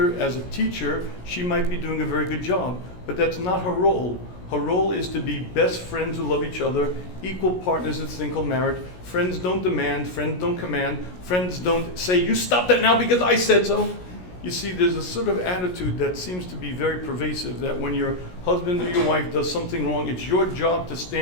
as a teacher, she might be doing a very good job, but that's not her role. Her role is to be best friends who love each other, equal partners in this thing called marriage. Friends don't demand, friends don't command, friends don't say, you stop that now because I said so. You see, there's a sort of attitude that seems to be very pervasive, that when your husband or your wife does something wrong, it's your job to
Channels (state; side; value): late; right; 17 ms